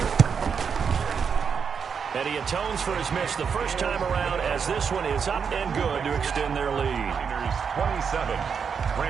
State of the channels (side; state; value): left; quieter; 6.5 dB